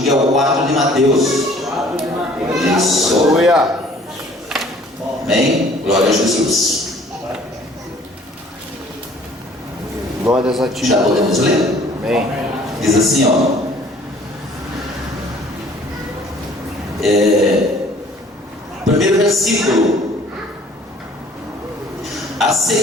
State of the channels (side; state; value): both; normal; correlation 0.54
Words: o 4 de Mateus. Isso. Aleluia. Amém? Glória a Jesus. Glórias a ti. Já podemos ler? Amém. Diz assim, ó. Primeiro versículo. A